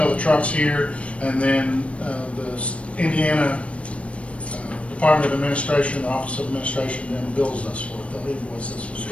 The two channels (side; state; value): right; late; 0.062 ms